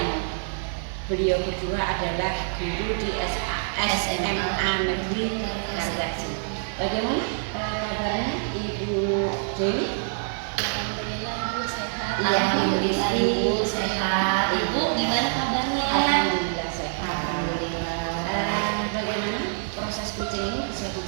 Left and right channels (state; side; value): silent; left; digital silence